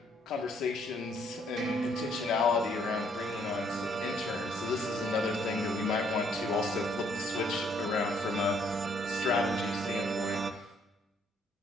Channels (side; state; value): both; normal; correlation 0.67